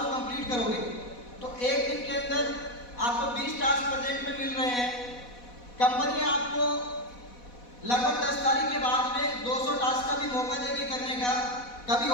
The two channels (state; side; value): late; right; 4.1 ms